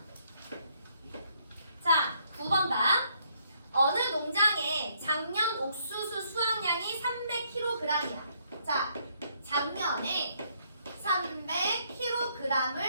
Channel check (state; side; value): inverted; both; correlation -0.70